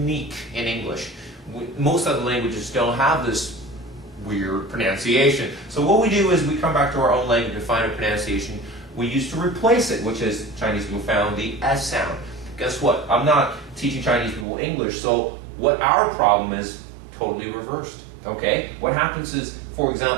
in English. Most other languages don't have this weird pronunciation. So what we do is we come back to our own language and find a pronunciation we used to replace it, which is Chinese people found the S sound. Guess what? I'm not teaching Chinese people English, so what our problem is totally reversed, okay? What happens is, for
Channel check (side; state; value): left; drops out; at 14.5 s